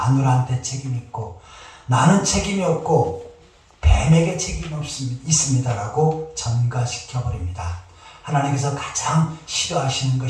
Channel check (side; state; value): both; identical; correlation 1.00